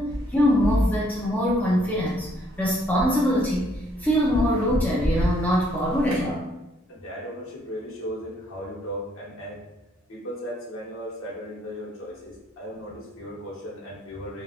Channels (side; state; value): both; normal; correlation 0.68